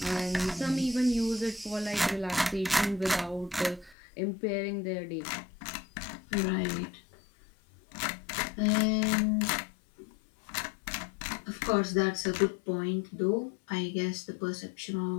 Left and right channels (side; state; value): right; drops out; at 4.0 s